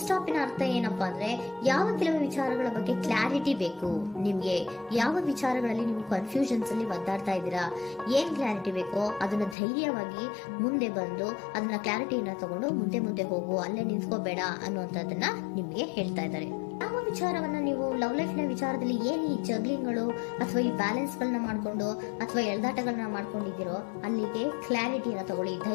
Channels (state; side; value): drops out; right; at 9.6 s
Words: ಸ್ಟಾಪ್ ನ ಅರ್ಥ ಏನಪ್ಪಾ ಅಂದ್ರೆ, ಯಾವ ಕೆಲವು ವಿಚಾರಗಳ ಬಗ್ಗೆ ಕ್ಲಾರಿಟಿ ಬೇಕು ನಿಮ್ಗೆ, ಯಾವ ವಿಚಾರಗಳಲ್ಲಿ ನೀವು ಕನ್ಫ್ಯೂಷನ್ಸ್ ಅಲ್ಲಿ ಒದ್ದಾಡ್ತಾ ಇದ್ದೀರಾ, ಏನ್ ಕ್ಲಾರಿಟಿ ಬೇಕೋ ಅದನ್ನ ಧೈರ್ಯವಾಗಿ ಮುಂದೆ ಬಂದು ಅದನ್ನ ಕ್ಲಾರಿಟಿಯನ್ನ ತಗೊಂಡು ಮುಂದೆ ಹೋಗು, ಅಲ್ಲೇ ನಿಂತ್ಕೋಬೇಡ ಅನ್ನುವಂಥದ್ದನ್ನ ನಿಮ್ಗೆ ಹೇಳ್ತಾ ಇದ್ದಾರೆ. ಯಾವ ವಿಚಾರವನ್ನ ನೀವು ಲವ್ ಲೈಫ್ ನ ವಿಚಾರದಲ್ಲಿ ಏನ್ ಈ ಜಗ್ಲಿಂಗ್ಗಳು ಅಥವಾ ಈ ಬ್ಯಾಲೆನ್ಸ್ ಗಳನ್ನ ಮಾಡ್ಕೊಂಡು ಅಥವಾ ಎಳ್ದಾಟಗಳನ್ನ ಮಾಡ್ಕೊಂಡಿದ್ದೀರೋ ಅಲ್ಲಿಗೆ ಕ್ಲಾರಿಟಿಯನ್ನ ತಗೊಳ್ಳಿ,